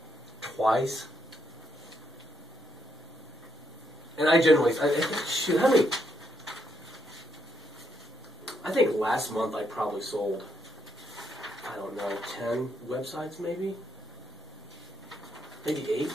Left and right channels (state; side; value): normal; both; correlation 0.77